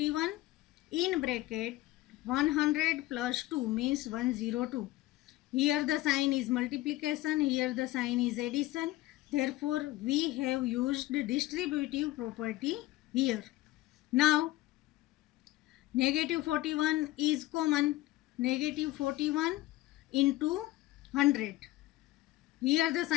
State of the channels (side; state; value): right; quieter; 17.2 dB